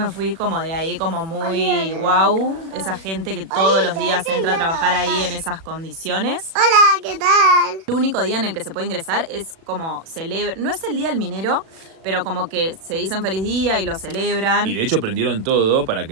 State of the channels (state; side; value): late; left; 37 ms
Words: fui como de ahí como muy wow, esa gente que todos los días entra a trabajar ahí en esas condiciones. Hola, ¿qué tal? El único día en el que se puede ingresar es como celebra, no es el día del minero, pero como que se dicen feliz día y lo celebran. Y de hecho prendieron todo para